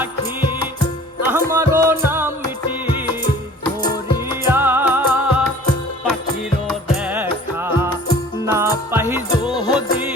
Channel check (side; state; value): both; normal; correlation 0.47